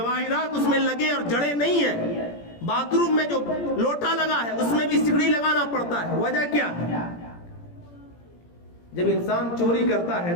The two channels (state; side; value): late; right; 17 ms